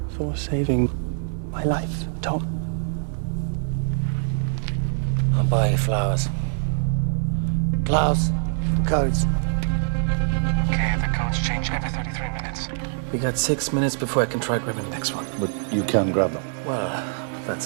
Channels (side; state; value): left; silent; digital silence